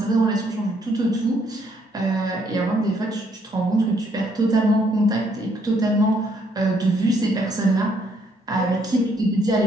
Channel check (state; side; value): normal; both; correlation 0.70